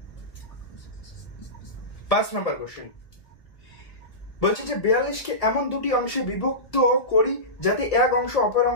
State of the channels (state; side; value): late; right; 1.6 ms